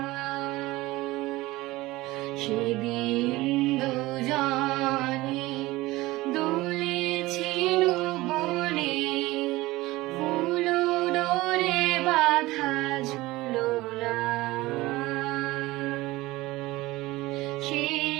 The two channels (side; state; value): left; quieter; 19.3 dB